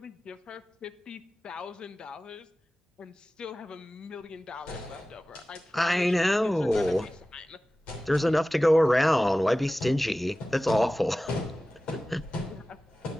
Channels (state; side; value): normal; both; correlation 0.96